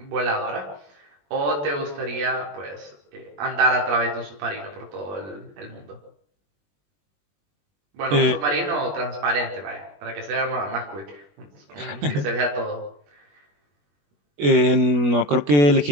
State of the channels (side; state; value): left; late; 21 ms